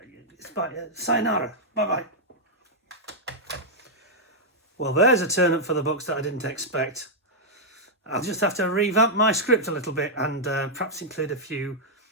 Sayonara. Bye-bye. Well, there's a turn up for the books that I didn't expect. I'll just have to revamp my script a little bit and perhaps include a few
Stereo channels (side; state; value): both; normal; correlation -0.05